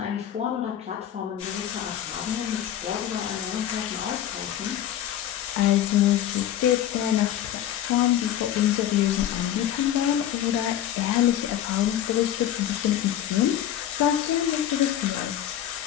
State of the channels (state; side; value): quieter; right; 11.3 dB